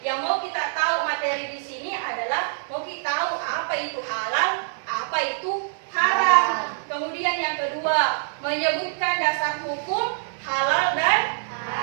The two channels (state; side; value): silent; left; digital silence